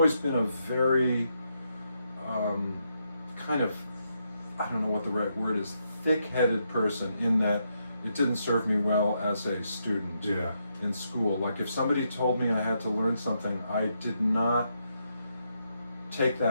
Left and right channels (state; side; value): inverted; both; correlation -0.80